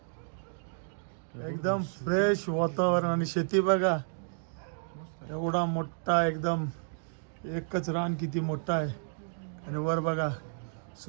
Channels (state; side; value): silent; left; digital silence